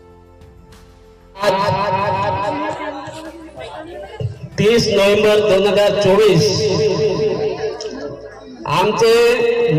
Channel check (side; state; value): both; identical; correlation 1.00